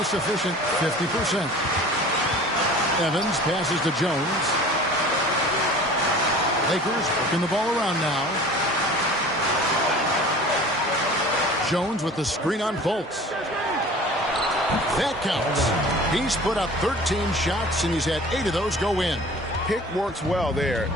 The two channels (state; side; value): normal; both; correlation 0.43